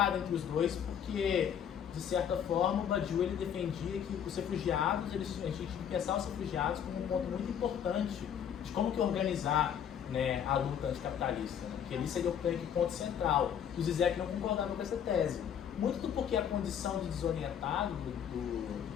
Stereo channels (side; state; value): right; quieter; 8.7 dB